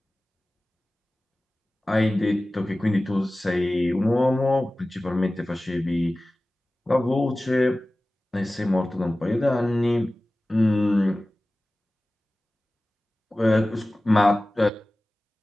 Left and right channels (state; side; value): normal; both; correlation 0.97